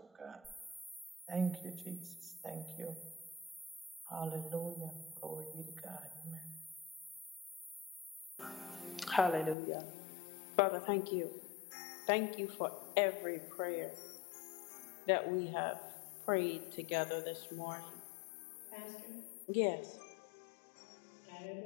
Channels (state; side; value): drops out; right; at 9.6 s